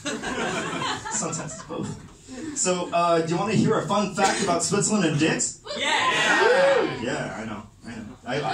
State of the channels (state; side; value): identical; both; correlation 1.00